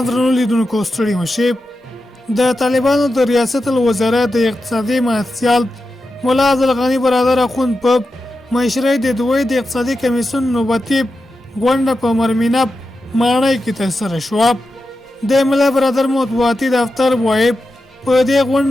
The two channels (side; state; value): both; normal; correlation 0.90